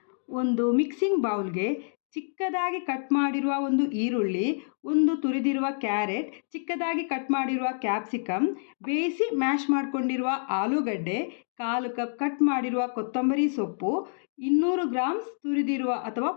ಒಂದು ಮಿಕ್ಸಿಂಗ್ ಬೌಲ್ಗೆ ಚಿಕ್ಕದಾಗಿ ಕಟ್ ಮಾಡಿರುವ ಒಂದು ಈರುಳ್ಳಿ, ಒಂದು ತುರಿದಿರುವ ಕ್ಯಾರೆಟ್, ಚಿಕ್ಕದಾಗಿ ಕಟ್ ಮಾಡಿರುವ ಕ್ಯಾಪ್ಸಿಕಮ್, ಬೇಯಿಸಿ ಮ್ಯಾಶ್ ಮಾಡಿಕೊಂಡಿರುವ ಆಲೂಗಡ್ಡೆ, 1/4 ಕಪ್ ಕಟ್ ಮಾಡಿರುವ ಕೊತ್ತಂಬರಿ ಸೊಪ್ಪು, 200 ಗ್ರಾಮ್ಸ್ ತುರಿದಿರುವ ಅಥವಾ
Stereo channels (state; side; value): silent; right; digital silence